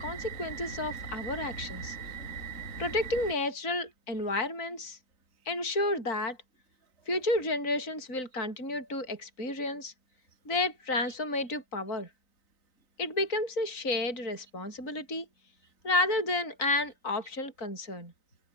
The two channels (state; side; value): late; right; 3.9 ms